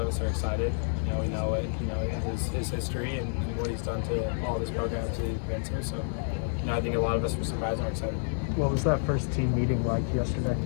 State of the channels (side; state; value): right; silent; digital silence